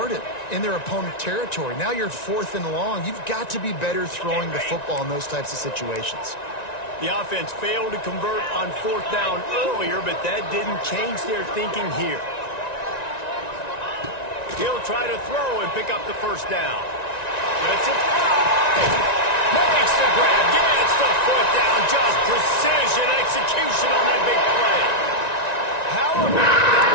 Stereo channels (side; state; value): right; late; 1.9 ms